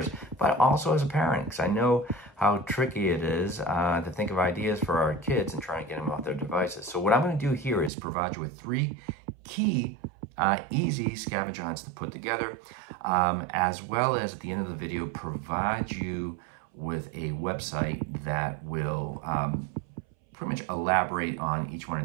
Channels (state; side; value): drops out; left; at 7.9 s